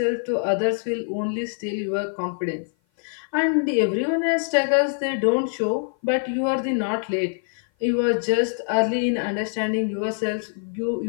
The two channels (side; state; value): right; silent; 56 dB below the other